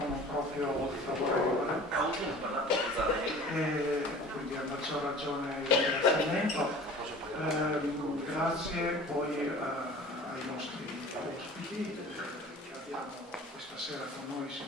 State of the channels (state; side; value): normal; both; correlation 0.43